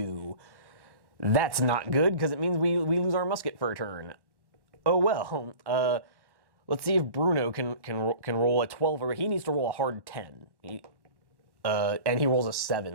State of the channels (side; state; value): left; late; 1.1 ms